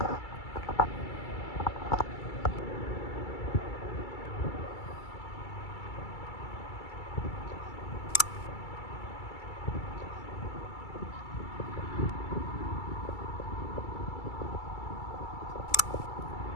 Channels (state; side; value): late; right; 2.3 ms